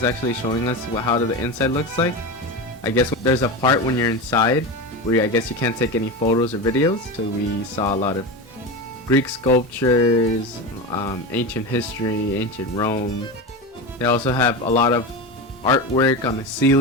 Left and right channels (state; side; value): normal; both; correlation 0.22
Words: actually showing us how the inside looks like. I guess there's a part when you're inside where I guess you can't take any photos or videos. So we saw a lot of Greek sculptures, ancient history, ancient Rome. They also have a lot of artwork on the